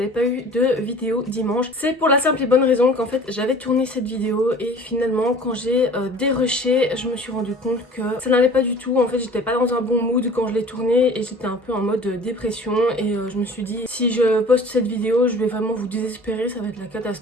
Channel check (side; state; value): both; normal; correlation 0.46